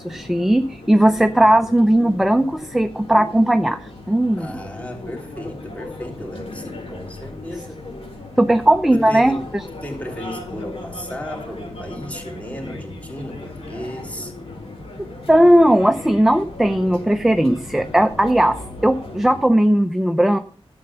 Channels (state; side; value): normal; both; correlation 0.97